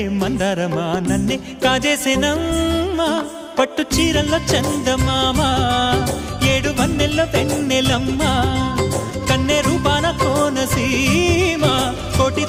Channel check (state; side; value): identical; both; correlation 1.00